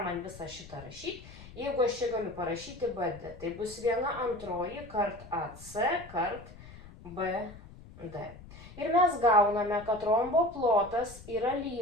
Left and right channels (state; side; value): noise; left; rumble, 17 dB below the sound